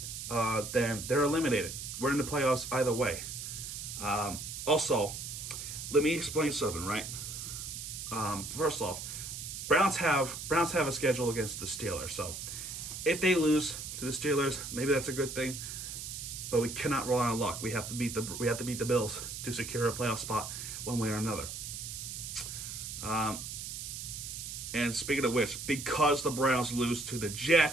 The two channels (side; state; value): right; noise; hiss, 7 dB below the sound